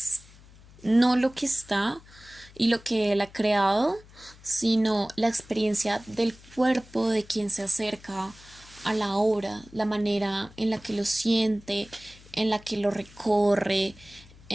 no lo que está y lo que él ha creado, sino la experiencia del cuerpo de quien se acerca a la obra, la manera en la que lo siente, en la que lo recorre,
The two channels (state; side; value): noise; left; hum, 23 dB below the sound